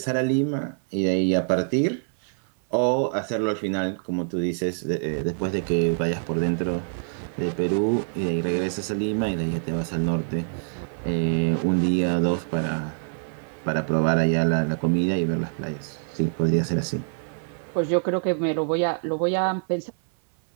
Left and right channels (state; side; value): silent; left; 59 dB below the other